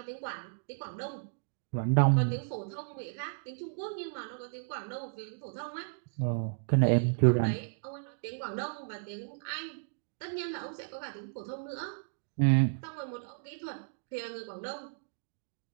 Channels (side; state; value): left; silent; digital silence